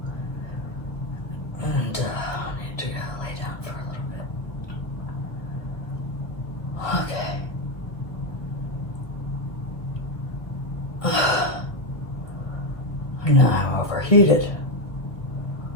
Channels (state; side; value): late; right; 1.3 ms